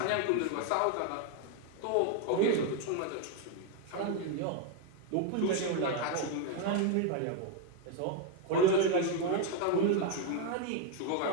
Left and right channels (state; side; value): different; both; correlation 0.01